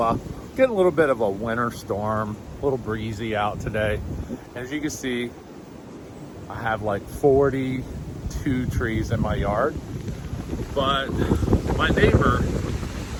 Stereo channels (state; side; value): identical; both; correlation 1.00